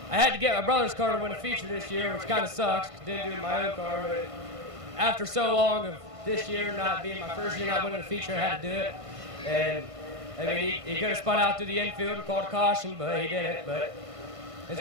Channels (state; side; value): late; left; 1.5 ms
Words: I had to get my brother's car to win a feature this year, which kind of sucks. Didn't do it in my own car, but after so long of this year not being my first year not winning a feature, I had to do it. And, I mean, he could have spun out through the infield and called a caution, but he didn't. But